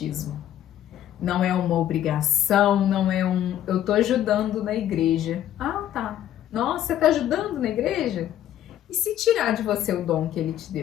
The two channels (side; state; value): right; quieter; 11.6 dB